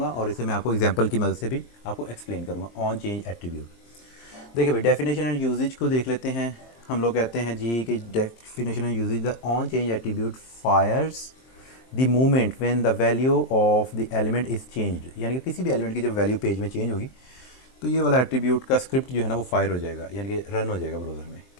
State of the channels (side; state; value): right; late; 23 ms